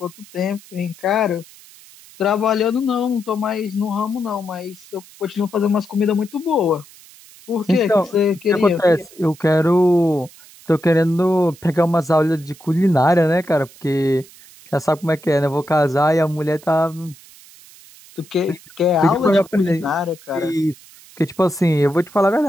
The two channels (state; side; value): noise; right; hiss, 23 dB below the sound